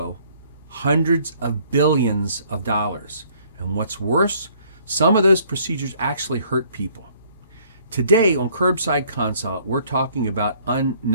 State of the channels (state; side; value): inverted; both; correlation -0.61